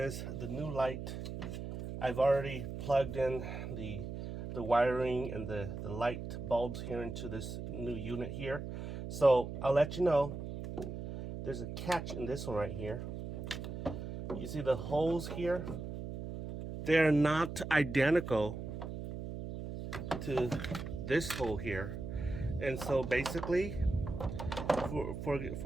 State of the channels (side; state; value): right; noise; hum, 7 dB below the sound